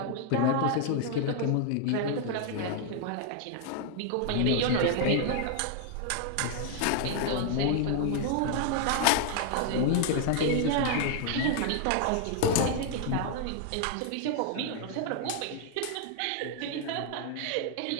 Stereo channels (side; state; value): both; different; correlation 0.00